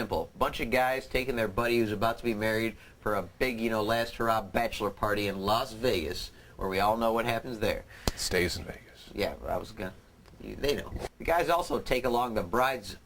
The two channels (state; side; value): identical; both; correlation 1.00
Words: A bunch of guys taking their buddy who's about to be married for a big, last hurrah bachelor party in Las Vegas, where we all know what happens there. Stays in Vegas. Yeah, they know. The guys also take along the bride's